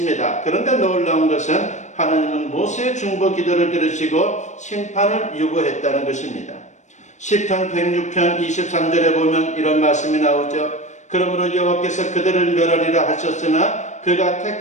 그런데 놀라운 것은 하나님은 모세의 중보 기도를 들으시고 심판을 유보했다는 것입니다. 시편 106편 23절에 보면 이런 말씀이 나오죠. 그러므로 여호와께서 그들을 멸하리라 하셨으나 그가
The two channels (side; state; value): right; late; 0.34 ms